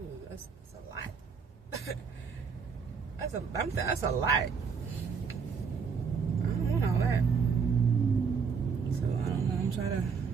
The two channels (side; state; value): left; quieter; 5.9 dB